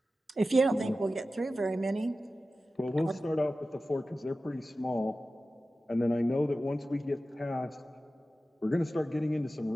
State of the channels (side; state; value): both; normal; correlation 0.94